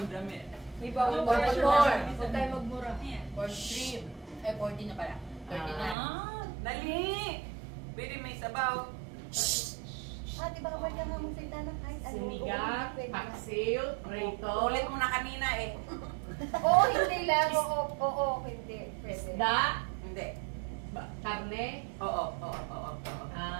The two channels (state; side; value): drops out; left; at 6.0 s